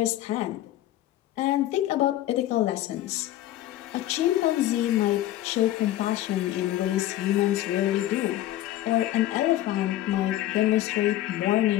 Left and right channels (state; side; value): quieter; right; 14.0 dB